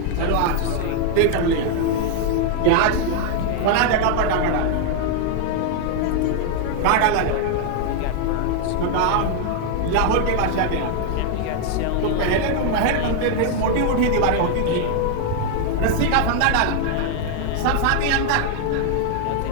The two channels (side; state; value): both; different; correlation 0.00